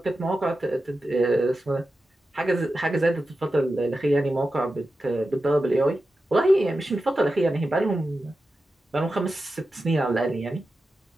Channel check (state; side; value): normal; both; correlation 0.92